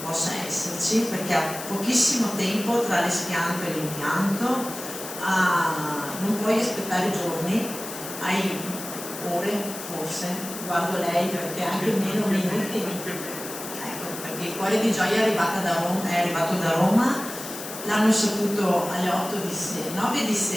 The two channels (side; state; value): left; noise; hiss, 10 dB below the sound